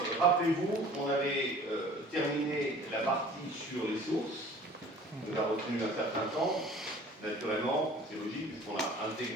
rappelez-vous, on avait terminé la partie sur les sources. On a retenu un certain temps. Naturellement, c'est logique, puisqu'on a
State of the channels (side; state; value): both; normal; correlation 0.48